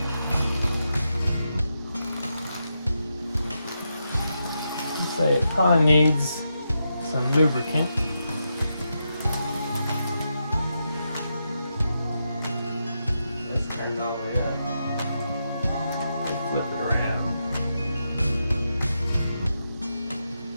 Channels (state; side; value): inverted; both; correlation -0.85